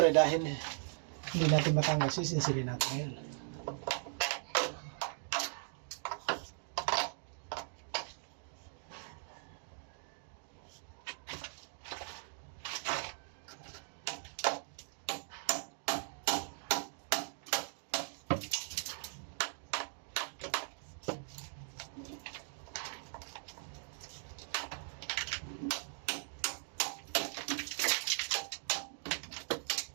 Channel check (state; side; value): silent; left; digital silence